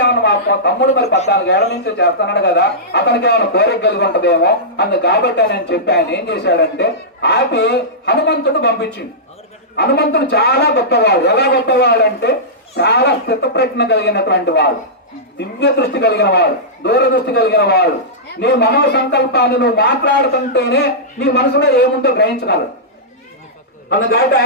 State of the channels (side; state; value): both; normal; correlation -0.15